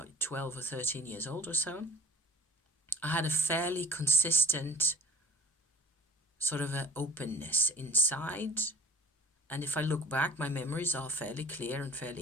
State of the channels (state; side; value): normal; both; correlation 0.42